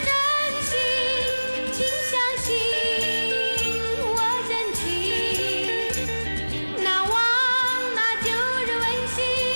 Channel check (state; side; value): inverted; both; correlation -1.00